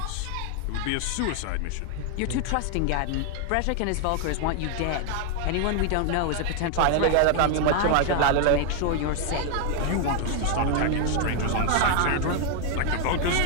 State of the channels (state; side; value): different; both; correlation 0.00